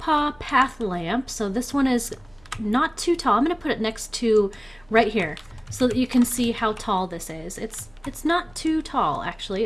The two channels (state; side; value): noise; right; hum, 29 dB below the sound